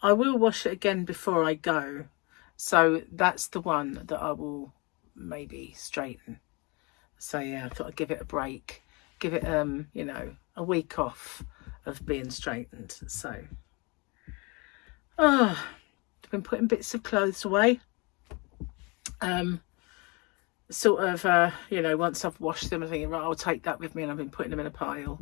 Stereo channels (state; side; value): quieter; right; 28.6 dB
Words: I will wash it again before I go. So that's the one that I will maybe straighten. So yeah, I thought I'd give it a break. Give it, you know, a week off of being straightened. So, I've been putting bits of clothes away. Sort of, you know, once I've washed them, I'm thinking, right, I'll take that with me, and I've been putting them in a pile,